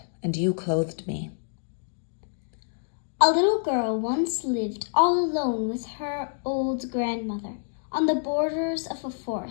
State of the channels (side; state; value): right; silent; digital silence